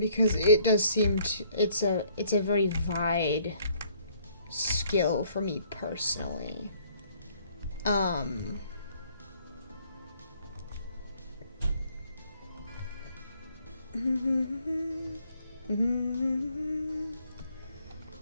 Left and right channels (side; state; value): both; inverted; correlation -0.63